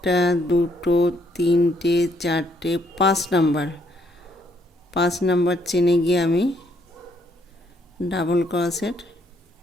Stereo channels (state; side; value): normal; both; correlation 0.70